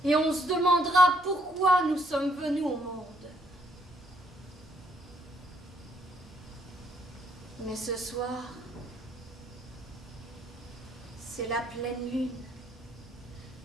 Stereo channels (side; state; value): both; normal; correlation 0.70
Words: Et on se demandera pourquoi nous sommes venus au monde. Mais ce soir, c'est la pleine lune.